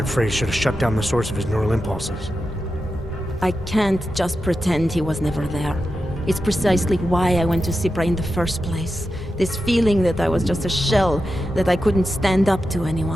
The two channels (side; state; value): both; normal; correlation 0.90